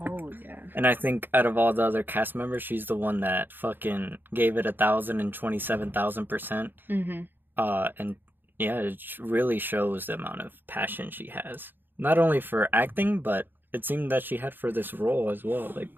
yeah. And I think out of all the other cast members, she's the one that fucking gave it 1,027,000%. Mm-hmm. And yeah, it really shows the amount of passion she has. Not only for acting, but it seemed that she had for this role as well. Like,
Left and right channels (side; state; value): left; late; 0.095 ms